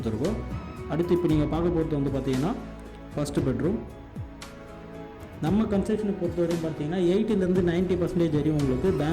அடுத்து இப்போ நீங்கள் பார்க்க போகிறது வந்து பார்த்தீங்கன்னா ஃபஸ்ட்டு பெட்ரூம். நம்ம கன்ஸ்ட்ரக்ஷனை பொறுத்தவரையும் பார்த்தீங்கன்னா 80% 90% வரையும் உங்களுக்கு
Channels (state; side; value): identical; both; correlation 1.00